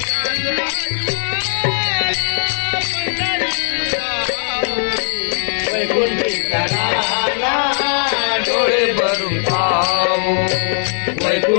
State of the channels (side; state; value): right; silent; 67 dB below the other